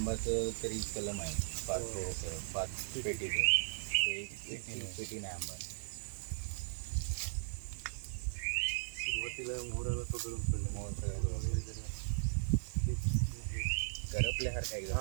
तरी कलम आहे 5 पेटीचं, एक पेटी नाही आंबा। सुरुवातीला मोहराला पकडून करपल्यासारखं एकदम।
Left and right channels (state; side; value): silent; left; digital silence